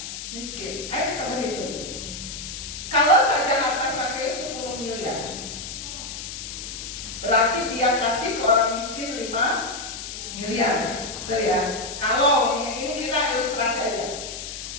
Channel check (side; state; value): left; noise; hiss, 8 dB below the sound